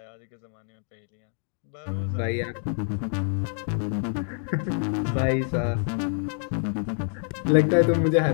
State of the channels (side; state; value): right; silent; 60 dB below the other